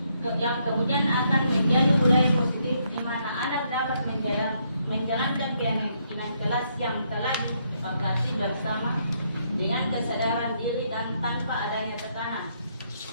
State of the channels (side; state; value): both; inverted; correlation -0.74